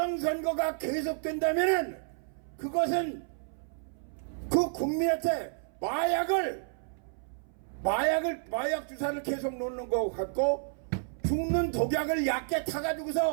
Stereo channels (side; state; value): left; silent; 57 dB below the other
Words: 계속된다면은 그것은 그 국민한테 마약 주사를 계속 놓는 것 같고 죽는 독약을 얕게